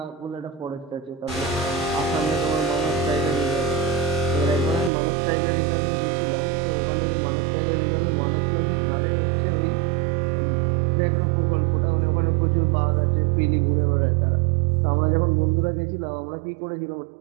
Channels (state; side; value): drops out; left; at 4.9 s